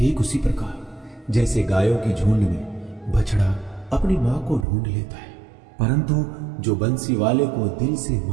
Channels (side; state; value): left; drops out; at 4.7 s